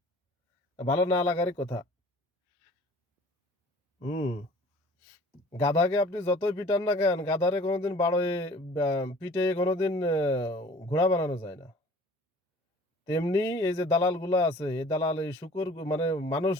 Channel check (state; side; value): normal; both; correlation 0.49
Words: ভালো না লাগারই কথা। হুম। গাধাকে আপনি যতই পিটান না কেন, গাধারে কোনোদিন পিটে কোনোদিন ঘোড়া বানানো যায় না। তেমনি এই যে দালালগুলা আছে, এই দালাল এই শূকর মানে